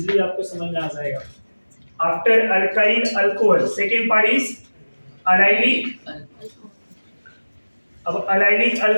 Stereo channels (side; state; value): both; inverted; correlation -1.00